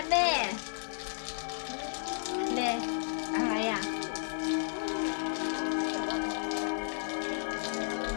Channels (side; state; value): right; silent; digital silence